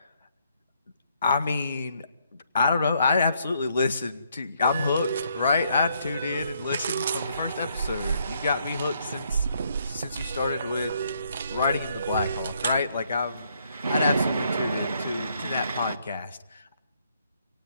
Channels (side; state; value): both; inverted; correlation -0.72